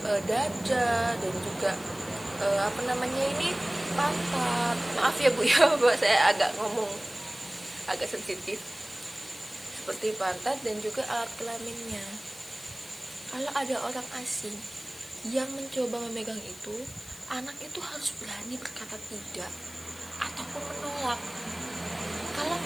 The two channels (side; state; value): left; noise; hiss, 18 dB below the sound